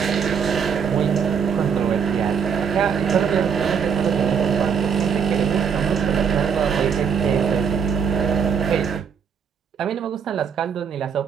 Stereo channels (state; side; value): quieter; left; 6.8 dB